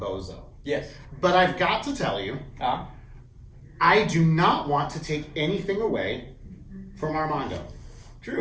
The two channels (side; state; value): both; identical; correlation 1.00